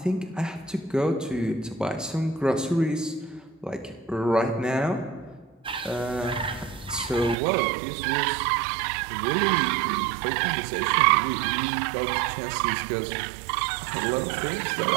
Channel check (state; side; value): drops out; left; at 7.4 s